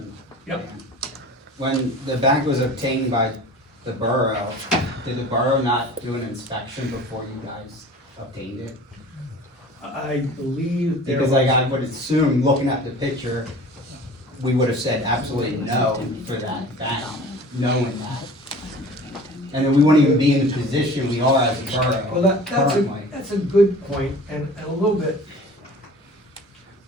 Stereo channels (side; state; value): both; normal; correlation 0.42